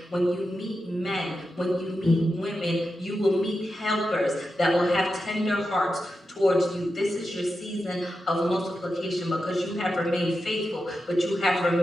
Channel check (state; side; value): normal; both; correlation 0.89